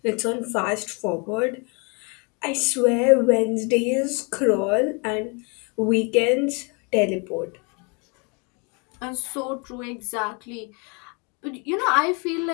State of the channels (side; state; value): right; quieter; 32.7 dB